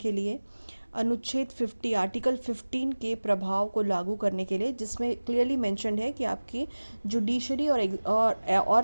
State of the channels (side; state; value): both; inverted; correlation -1.00